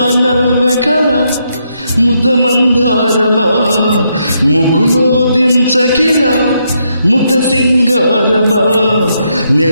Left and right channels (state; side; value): inverted; both; correlation -0.78